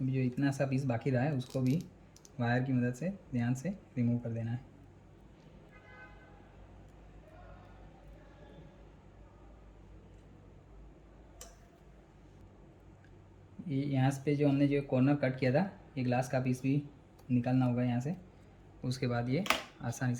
अभी जो इतना सा पीस बाकी रहा है उसको भी वायर की मदद से ध्यान से रिमूव कर देना है। ये यहाँ पे जो हमने जो कॉर्नर कट किया था, ये ग्लास का पीस भी निकालना होगा यहाँ से। उसके बाद ये आसानी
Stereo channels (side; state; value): both; identical; correlation 1.00